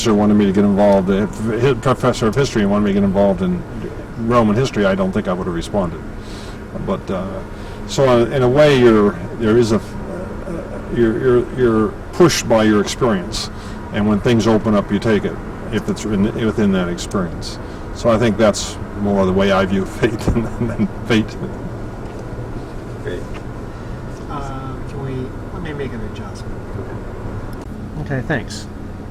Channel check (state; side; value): identical; both; correlation 1.00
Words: wanted me to get involved, a professor of history wanted me to get involved in Roman history, I don't think I would have responded. But so in a way, you're pushed by your experience, and when things open up, you take it if it's within that experience. So I think that's more the way I view fate than fate. Great. Let me make an adjustment. Okay, thanks.